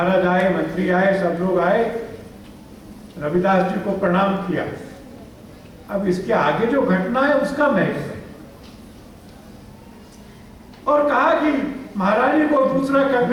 आए, मंत्री आए, सब लोग आए, रविदास जी को प्रणाम किया। अब इसके आगे जो घटना है उसका महत्व है। और कहा कि महारानी को दूसरा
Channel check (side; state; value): both; identical; correlation 1.00